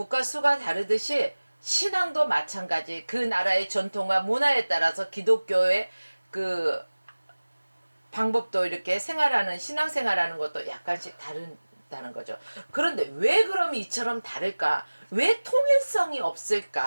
수가 다르듯이 신앙도 마찬가지. 그 나라의 전통과 문화에 따라서 기독교의 그 방법도 이렇게 신앙생활하는 것도 약간씩 다르다는 거죠. 그런데 왜 그럼 이처럼 다를까? 왜 통일성이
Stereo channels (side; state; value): both; inverted; correlation -1.00